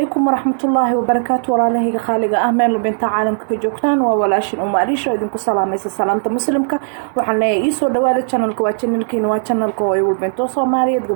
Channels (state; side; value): silent; left; 68 dB below the other